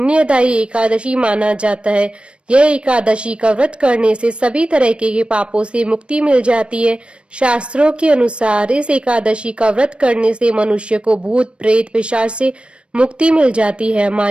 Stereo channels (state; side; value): late; left; 0.058 ms